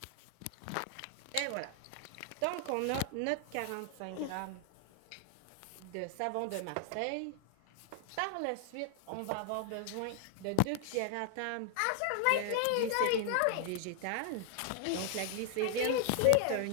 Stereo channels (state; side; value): different; both; correlation 0.00